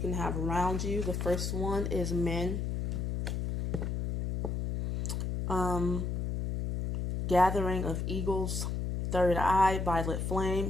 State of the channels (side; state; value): left; noise; hum, 2 dB below the sound